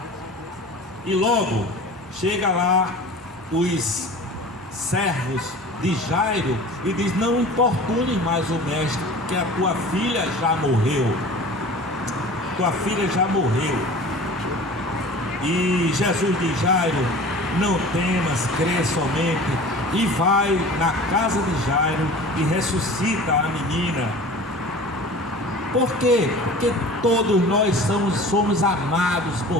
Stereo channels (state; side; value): normal; both; correlation 0.40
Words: E logo chega lá os servos de Jairo e diz: não importune mais o mestre, que a tua filha já morreu. Tua filha já morreu. E Jesus diz: Jairo, não temas, crê somente. E vai na casa de Jairo e ressuscita a menina. Por quê? Porque todos nós somos amados